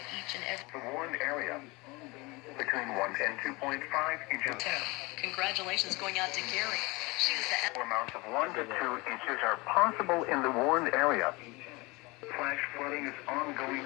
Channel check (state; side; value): quieter; right; 24.6 dB